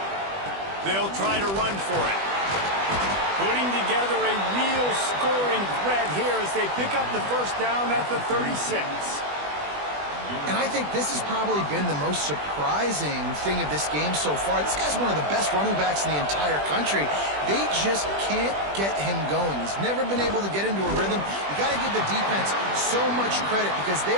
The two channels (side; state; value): left; late; 20 ms